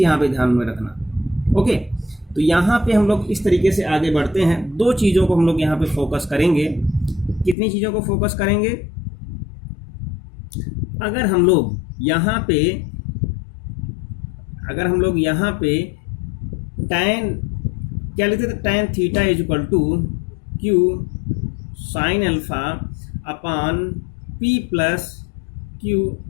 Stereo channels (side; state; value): right; drops out; at 7.6 s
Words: पे ध्यान में रखना। ओके, तो यहाँ पे हम लोग इस तरीके से आगे बढ़ते हैं। दो चीज़ों को हम लोग यहाँ पे फोकस करेंगे। कितनी चीज़ों को फोकस करेंगे, अगर हम लोग यहाँ पे टैन क्या लिखते थे, tan theta is equal to Q sine alpha upon P plus Q